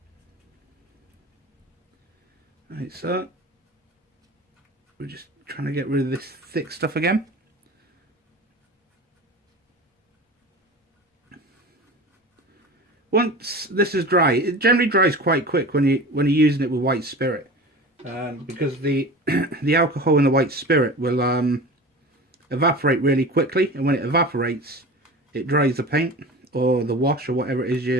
Right, so we're just trying to get rid of this thick stuff again. Once this is dry, it generally dries quite quick when you're using it with white spirit, because the the alcohol in the white spirit will evaporate really quickly, and when it evaporates, it dries the paint or the wash or whatever it is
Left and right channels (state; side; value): normal; both; correlation 0.34